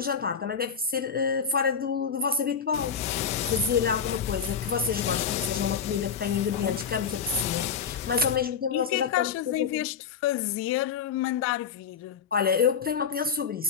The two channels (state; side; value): quieter; right; 6.7 dB